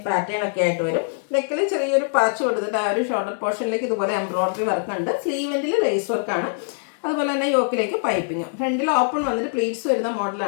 പാറ്റേൺ ഒക്കെ ആയിട്ട് വരും. നെക്കിൽ ചെറിയൊരു പാച്ച് കൊടുത്തിട്ട് ആ ഒരു ഷോൾഡർ പോർഷനിലേക്ക് ഇതുപോലെ എംബ്രോയിഡറി വർക്ക് ഉണ്ട്. സ്ലീവെൻറ്റിൽ ലേസ് വർക്കാണ്. അതുപോലെ തന്നെ യോക്കിലേക്ക് പൈപ്പിങ്ങും. ഫ്രണ്ടിൽ ഓപ്പൺ വന്നിട്ട് പ്ലീറ്റ്സ് വരുന്ന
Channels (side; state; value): right; silent; 59 dB below the other